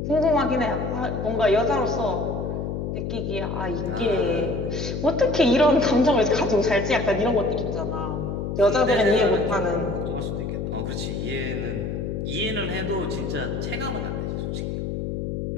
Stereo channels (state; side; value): noise; left; hum, 3 dB below the sound